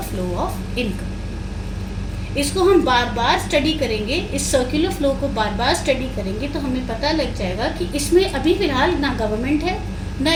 flow of income. इसको हम बार बार स्टडी करेंगे, इस circular flow को बार बार स्टडी करेंगे तो हमें पता लग जाएगा कि इसमें अभी फिलहाल ना गवर्नमेंट है ना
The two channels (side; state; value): both; identical; correlation 1.00